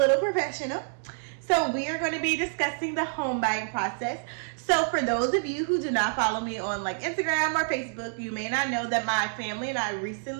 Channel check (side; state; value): left; silent; digital silence